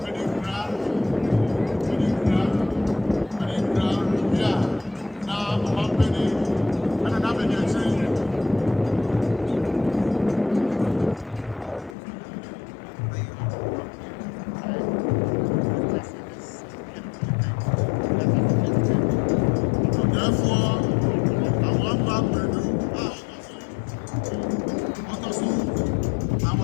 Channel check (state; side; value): drops out; right; at 12.0 s